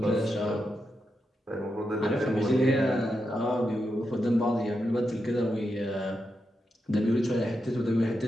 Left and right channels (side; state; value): both; normal; correlation 0.86